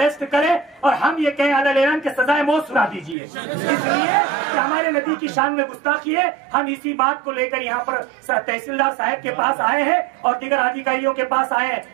करें और हम ये कहें अलग के सजाए मौत सुना दीजिए, इसलिए कि हमारे नबी की शान में गुस्ताखी है। हम इसी बात को लेकर यहाँ पर तहसीलदार साहब के पास आए हैं और दीगर अधिकारियों के पास आए हैं।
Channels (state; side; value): drops out; left; at 3.2 s